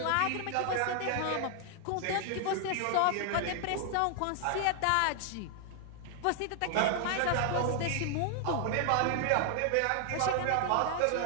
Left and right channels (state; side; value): different; both; correlation 0.00